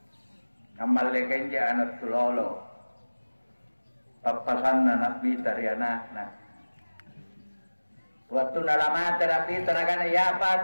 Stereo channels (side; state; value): both; inverted; correlation -1.00